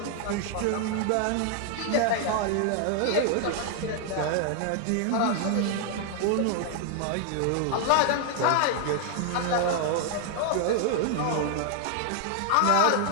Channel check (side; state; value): both; different; correlation 0.00